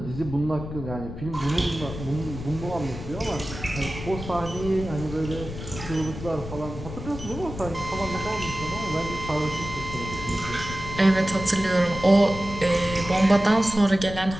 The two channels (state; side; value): noise; left; rumble, 10 dB below the sound